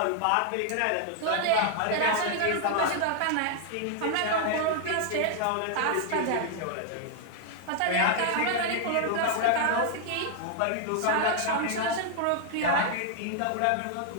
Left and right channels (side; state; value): both; different; correlation 0.00